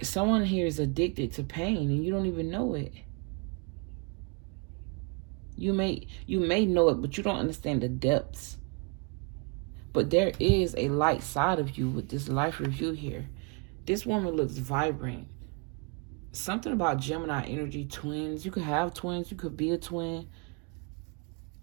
Someone here is addicted to pain and you don't even know it. You may know it, but you don't understand the depths. But there is a light side of you with this life review here. This woman looks vibrant. Something about Gemini energy, twins. You could have twins. You could be a twin.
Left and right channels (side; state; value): left; quieter; 32.1 dB